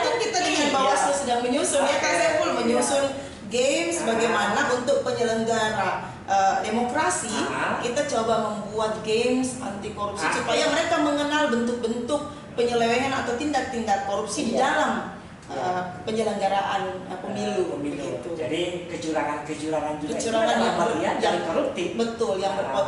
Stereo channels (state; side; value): identical; both; correlation 1.00